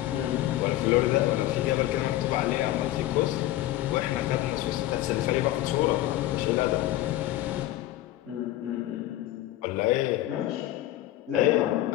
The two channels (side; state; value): right; quieter; 15.0 dB